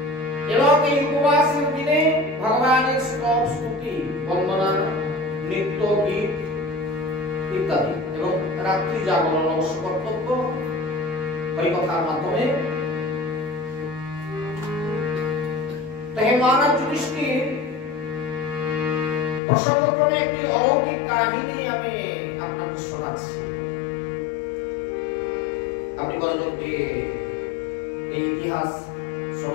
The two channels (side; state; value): right; drops out; at 19.4 s